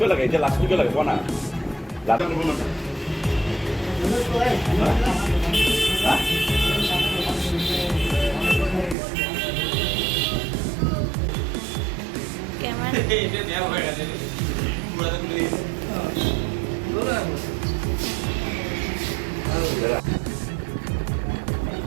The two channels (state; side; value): drops out; left; at 9.0 s